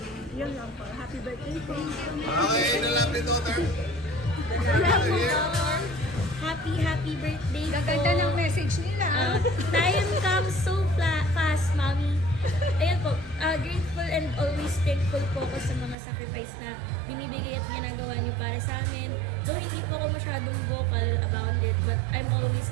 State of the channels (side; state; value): left; drops out; at 16.0 s